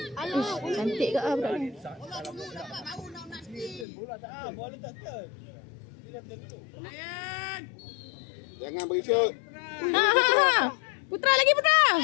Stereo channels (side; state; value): right; drops out; at 3.9 s